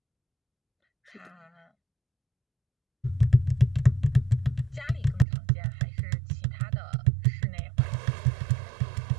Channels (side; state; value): left; drops out; at 5.2 s